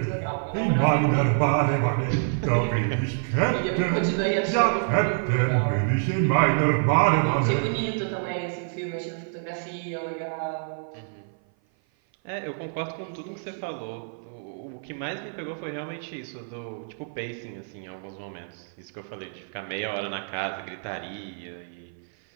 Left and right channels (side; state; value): left; silent; 55 dB below the other